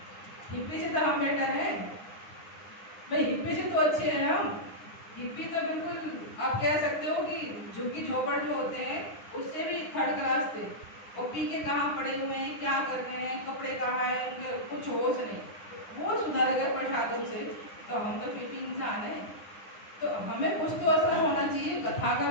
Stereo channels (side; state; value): right; late; 9.8 ms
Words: हिप्पी से तो हम बेटर हैं भाई, हिप्पी से तो अच्छे हैं हम। हिप्पी तो बिल्कुल आप कह सकते हो कि झुग्गी झोपड़ जो होते हैं उससे भी थर्ड क्लास थे। वो पी के कहाँ पड़े हुए हैं, क्या कर रहे हैं, कपड़े कहाँ हैं, उनके कुछ होश नहीं, वो सुधर गए प्रसादम से। तो हम तो फिर भी इंसान है, तो हमें कुछ तो असर होना चाहिए, कथा का